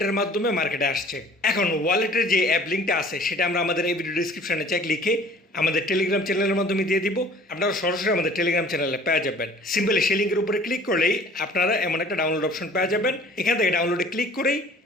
মাধ্যমে মার্কেটে আসছে। এখন ওয়ালেটের যে অ্যাপ লিঙ্কটা আছে সেটা আমরা আমাদের এই ভিডিও ডিসক্রিপশনে চেক লিখে আমাদের টেলিগ্রাম চ্যানেলের মাধ্যমে দিয়ে দিব। আপনারা সরাসরি আমাদের টেলিগ্রাম চ্যানেলে পেয়ে যাবেন। সিম্পলি সেই লিঙ্কের উপরে ক্লিক করলেই আপনারা এমন একটা ডাউনলোড অপশন পেয়ে যাবেন। এখান থেকে ডাউনলোডে ক্লিক করেই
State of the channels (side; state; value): both; normal; correlation 0.50